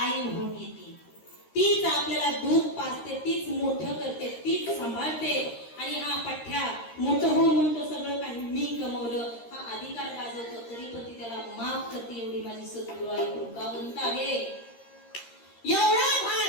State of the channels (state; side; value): late; right; 13 ms